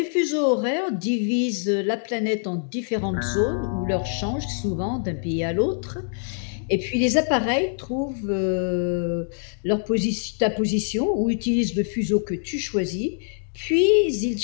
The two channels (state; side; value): silent; right; digital silence